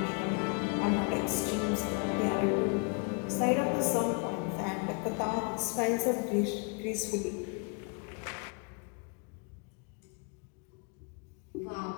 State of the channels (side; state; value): right; quieter; 35.3 dB